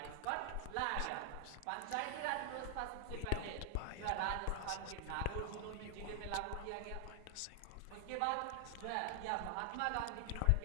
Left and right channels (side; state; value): both; different; correlation 0.00